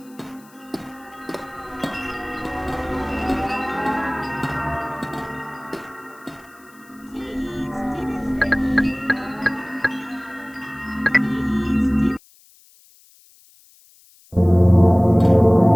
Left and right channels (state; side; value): noise; left; hiss, 28 dB below the sound